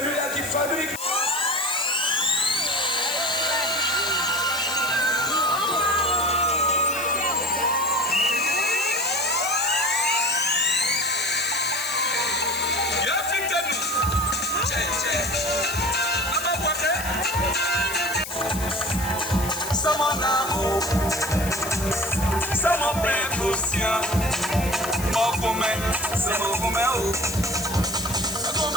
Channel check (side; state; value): left; noise; hiss, 9 dB below the sound